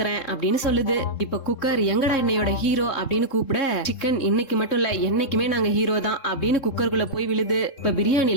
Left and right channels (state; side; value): late; right; 3.7 ms